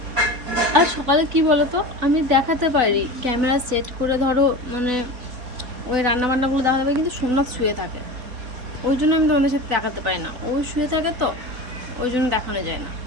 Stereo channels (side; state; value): left; late; 4.0 ms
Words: আর সকালে কি বলো তো, আমি দেখাতে পারি ক্যামেরা সেট করে ধরো, মানে ওই রান্নাবান্নাগুলো দেখাতে পারি, কিন্তু সোমনাথ শুয়ে থাকে, ওই জন্য আমি তোমাদের সাথে দেখাতে পারি না। ও শুয়ে থাকে তো ওই জন্য দেখানো যায় না,